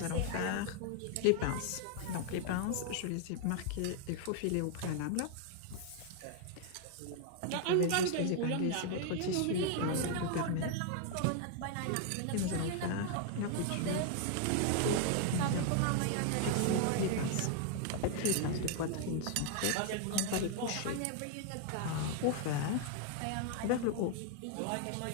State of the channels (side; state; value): both; different; correlation 0.00